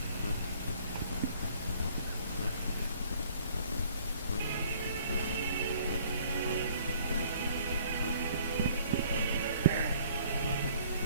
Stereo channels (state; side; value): inverted; both; correlation -0.57